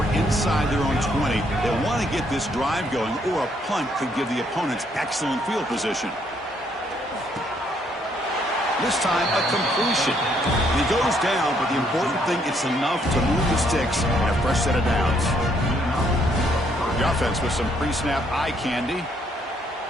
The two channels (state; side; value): normal; both; correlation 0.70